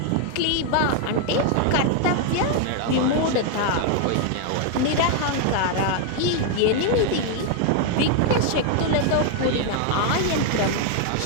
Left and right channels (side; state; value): both; different; correlation 0.00